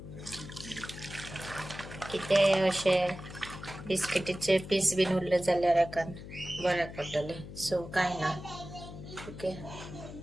कितें अशें बिस्किटीचे पीस बीन उरले जाल्यार एकान बऱ्याक पडटले. सो कांय ना. ओके.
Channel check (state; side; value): noise; left; hum, 12 dB below the sound